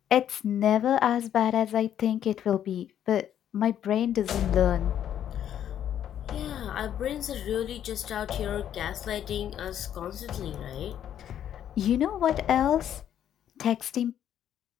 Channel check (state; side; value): quieter; right; 10.2 dB